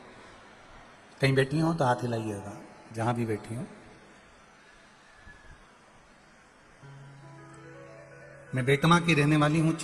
कहीं बैठी हो तो हाथ हिलाइएगा, जहां भी बैठी हो। मैं बेटमा की रहने वाली हूँ,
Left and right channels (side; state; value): both; identical; correlation 1.00